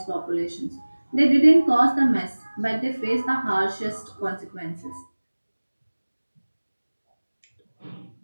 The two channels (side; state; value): both; inverted; correlation -1.00